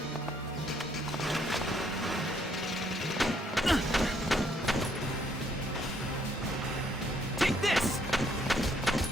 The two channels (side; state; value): both; normal; correlation 0.68